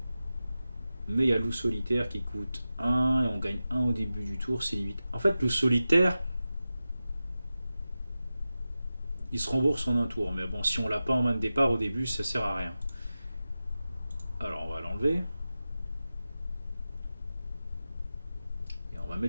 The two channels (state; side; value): inverted; both; correlation -0.94